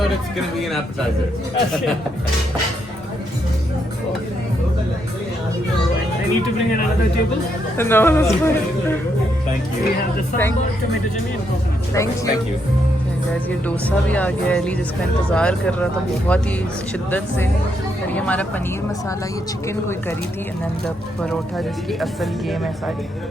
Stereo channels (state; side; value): normal; both; correlation 0.77